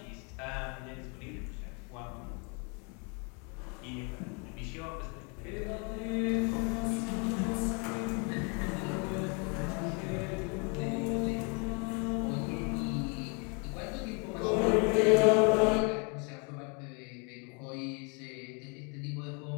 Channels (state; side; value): quieter; right; 34.9 dB